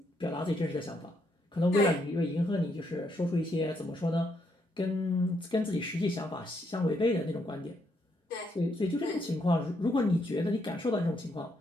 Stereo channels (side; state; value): both; normal; correlation 0.76